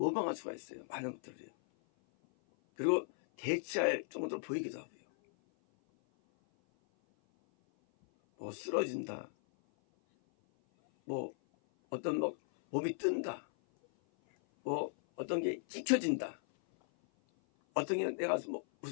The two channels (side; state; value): right; silent; 53 dB below the other